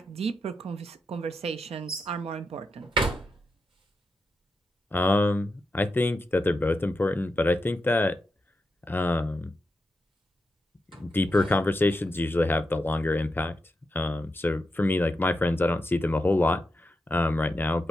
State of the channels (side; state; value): both; normal; correlation 0.87